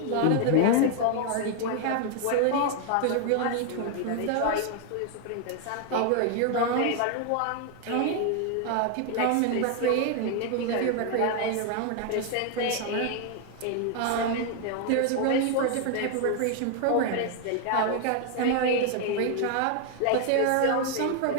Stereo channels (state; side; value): different; both; correlation 0.00